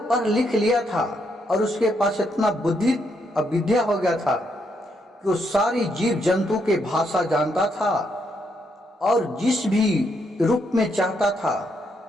पढ़ लिख लिया था और उसके पास इतना बुद्धि और विद्या हो गया था कि वो सारी जीव जंतु के भाषा जानता था और जिस भी रूप में चाहता था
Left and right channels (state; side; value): normal; both; correlation 0.77